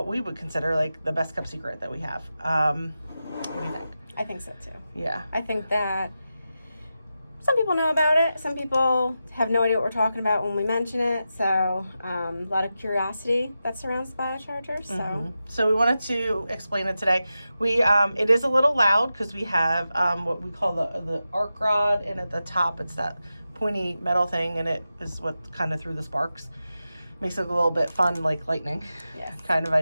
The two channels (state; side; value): inverted; both; correlation -0.91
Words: we would consider like the best kept secret that we have. What do you think? I think so too. Yeah. I think that some people know about it. Some people have no idea what we're talking about when we mention it. So a lot of curiosity that surrounds the Biocharger. So we wanted to explain it today. We it is a little loud because we have what we call the arc rod, and at the top it's that pointy metal thing, and it is what kind of threw the sparks. Makes it a little bit fun, like lightning, Yes. kind of